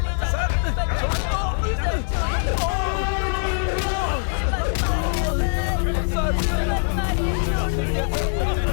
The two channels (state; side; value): silent; right; digital silence